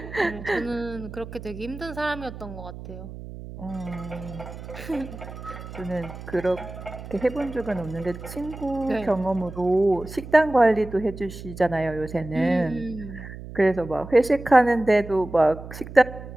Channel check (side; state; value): right; noise; hum, 12 dB below the sound